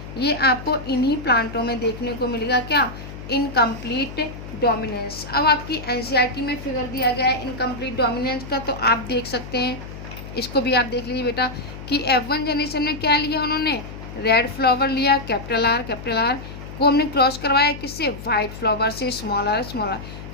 ये आपको इन्हीं प्लांटों में देखने को मिलेगा, क्या, इनकम्प्लीट डोमिनेंस। अब आपकी एनसीईआरटी में फिगर दिया गया है इनकम्प्लीट डोमिनेंस का, तो आप देख सकते हैं, इसको भी आप देख लीजिए बेटा कि F1 जनरेशन में क्या लिया उन्होंने, रेड फ्लावर लिया, कैपिटल आर को हमने क्रॉस करवाया किससे, वाइट फ्लावर से, स्मॉल आर।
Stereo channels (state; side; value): noise; left; hum, 12 dB below the sound